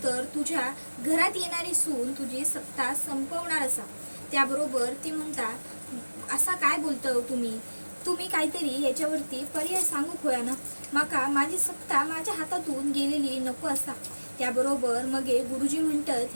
तुझ्या घरात येणारी सून तुझी सत्ता संपवणार असा. त्याबरोबर ती म्हणता, असा काय बोलतो तुम्ही काहीतरी याच्यावरती पर्याय सांगू होया ना. माका माझी सत्ता माझ्या हातातून गेलेली नको असा. त्याबरोबर मग गुरुजी म्हणतात,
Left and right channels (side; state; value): both; inverted; correlation -1.00